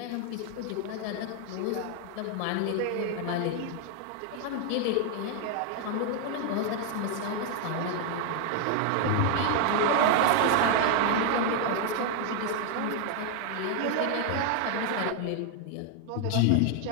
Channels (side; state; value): both; different; correlation 0.00